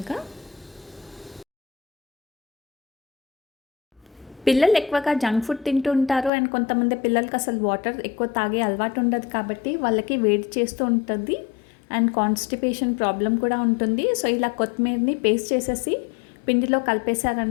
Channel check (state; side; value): drops out; right; at 6.3 s